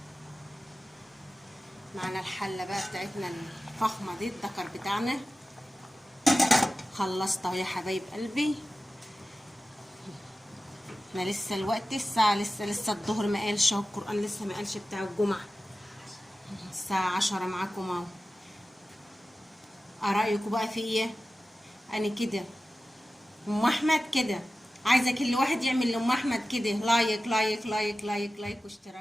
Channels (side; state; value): both; normal; correlation 0.95